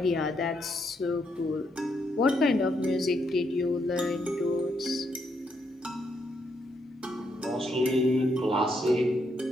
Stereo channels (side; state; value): both; normal; correlation 0.77